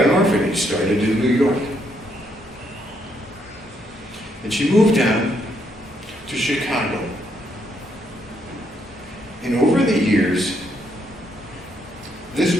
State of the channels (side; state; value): both; normal; correlation 0.74